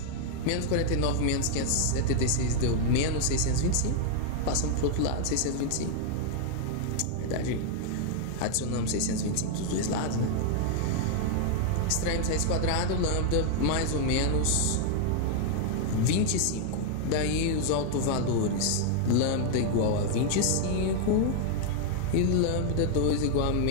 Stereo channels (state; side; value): different; both; correlation 0.00